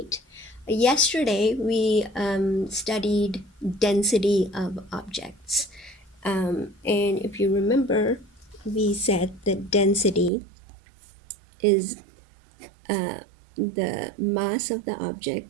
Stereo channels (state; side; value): drops out; left; at 10.3 s